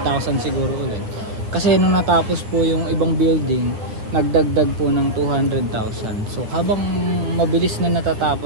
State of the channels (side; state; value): left; late; 9.4 ms